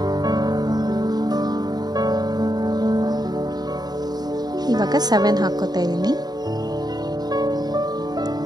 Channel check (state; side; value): late; left; 0.20 ms